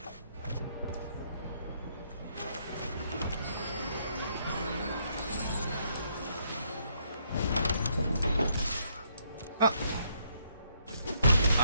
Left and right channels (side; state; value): both; inverted; correlation -0.72